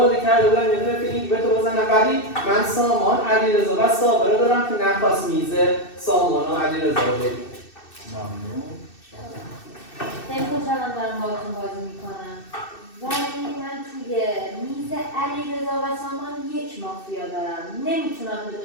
کرده بودن یه دونه فیلینگ به تو بزنن، ولی من سامان، علیرضا و صابر رو دارم که نخواست میز سامان و علیرضا رو بگیره. ممنون. خیلی خوشحالم دارم باهاتون بازی میکنم. ولی من توی میز علیرضا و سامان یک مافیا دارم. نمیتونم به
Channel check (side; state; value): right; late; 2.6 ms